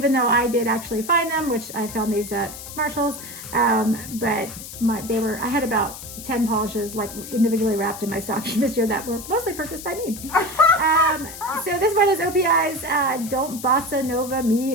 though I did actually find them, which I found these at Marshall's, but I had about 10 polishes like individually wrapped in my stocking this year that were mostly purchased by me. So this one is OPI's Don't Bossa Nova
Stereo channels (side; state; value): left; noise; hiss, 12 dB below the sound